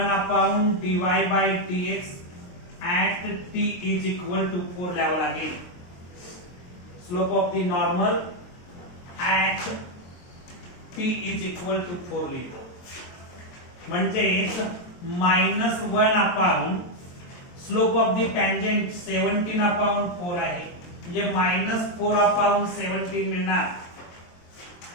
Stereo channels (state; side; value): late; right; 23 ms